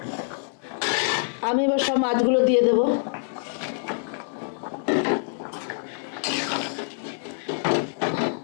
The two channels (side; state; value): right; silent; 61 dB below the other